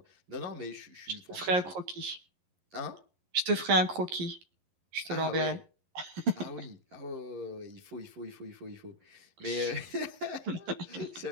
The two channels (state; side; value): late; left; 11 ms